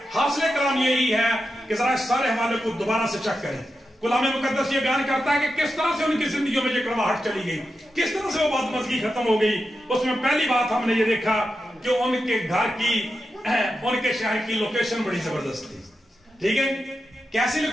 हासिल कलाम यही है कि जरा इस सारे हवाले को दोबारा से चेक करें। कलाम मुकद्दस ये बयान करता है कि किस तरह से उनकी जिंदगियों में ये कड़वाहट चली गई, किस तरह से वो बदमज़गी खत्म हो गई। उसमें पहली बात हमने ये देखा कि उनके घर की, उनके शहर की लोकेशन बड़ी जबरदस्त थी, ठीक है। कैसी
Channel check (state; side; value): normal; both; correlation 0.89